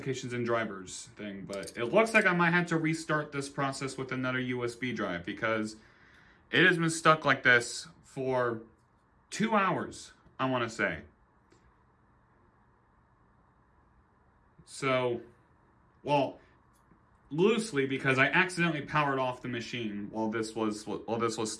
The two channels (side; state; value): both; identical; correlation 1.00